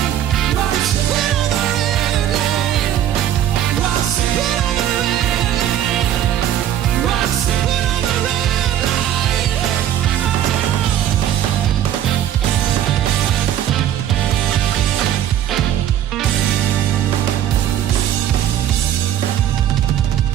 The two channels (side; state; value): left; quieter; 11.0 dB